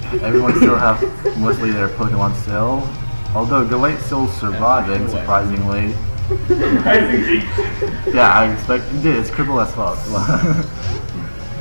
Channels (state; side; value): inverted; both; correlation -1.00